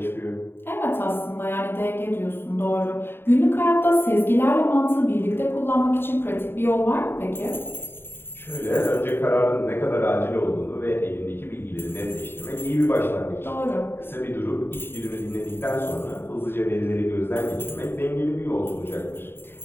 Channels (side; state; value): right; late; 0.11 ms